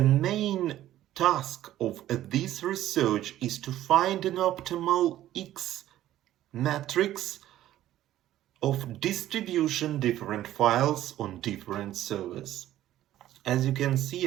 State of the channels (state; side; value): quieter; left; 13.4 dB